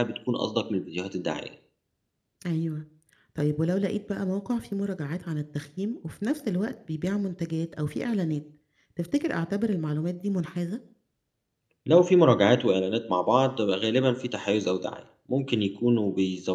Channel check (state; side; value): identical; both; correlation 1.00